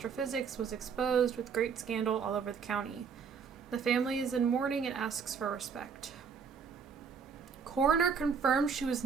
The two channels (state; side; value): quieter; left; 6.2 dB